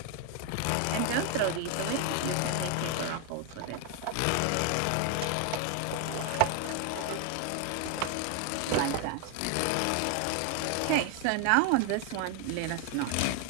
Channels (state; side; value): different; both; correlation 0.01